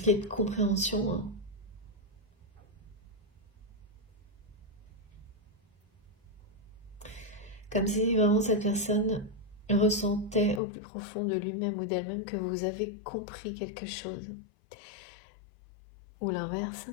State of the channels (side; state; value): right; drops out; at 10.6 s